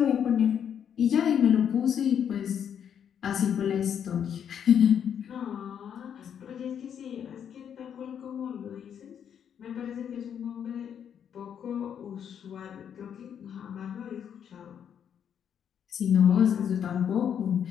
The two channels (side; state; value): right; quieter; 8.5 dB